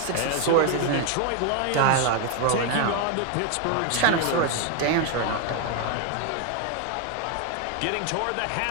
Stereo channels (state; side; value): different; both; correlation 0.01